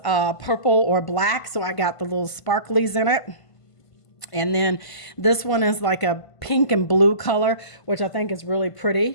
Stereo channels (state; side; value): late; right; 1.5 ms